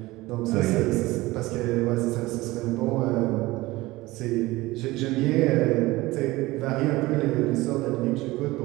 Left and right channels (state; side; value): quieter; left; 19.7 dB